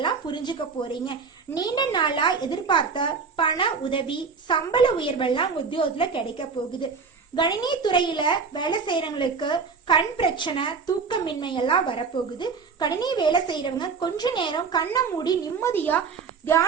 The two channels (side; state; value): left; quieter; 5.3 dB